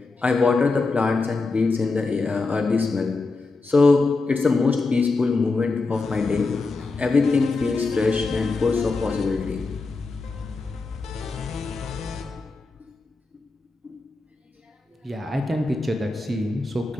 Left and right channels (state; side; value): quieter; right; 3.7 dB